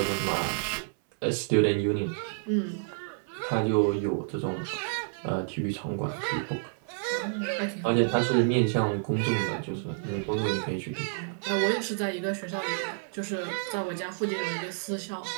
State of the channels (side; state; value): left; silent; 58 dB below the other